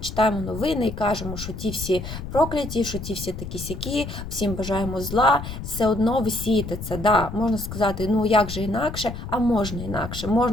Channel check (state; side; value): noise; left; rumble, 8 dB below the sound